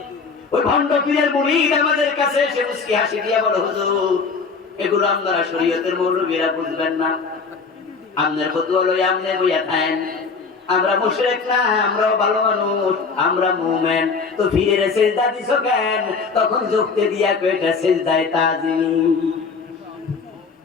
ওই ভণ্ড পীরের মুরিদ আমাদের কাছে এসে মুস্কি হাসি দিয়ে বলে, হুজুর এগুলো আপনারা শরীয়তের মৌলবীরা বুঝবেন না, আপনার ফতোয়া লই আমনে বইয়া থাকেন। আমরা মুশরিক না, আমরাও ভালো মানুষ, আমরা মুমিন। তো পীরের সেজদা দিছো কেন? তখন যুক্তি দিয়া কয়টা সেজদায় তাজিম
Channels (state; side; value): quieter; right; 4.9 dB